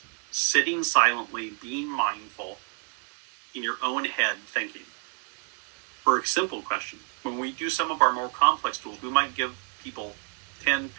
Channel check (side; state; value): left; quieter; 38.8 dB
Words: sitting silently, being mindful in your own head, thinking. For a simple question, when we do some of our more complex tools, we might give people 10,